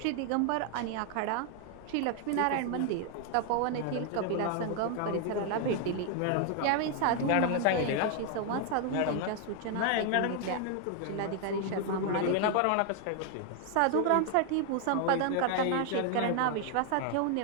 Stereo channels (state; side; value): different; both; correlation 0.00